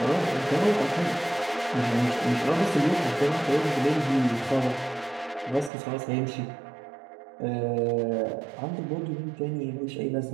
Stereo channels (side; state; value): left; drops out; at 5.7 s